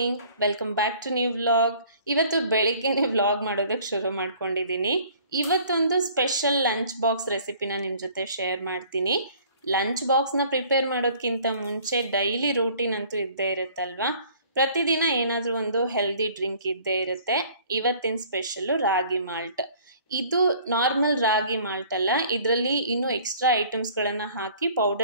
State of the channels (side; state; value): both; inverted; correlation -0.53